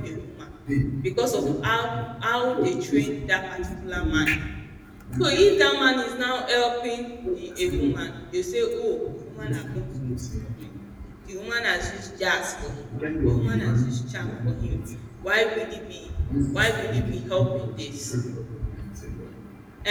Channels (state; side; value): identical; both; correlation 1.00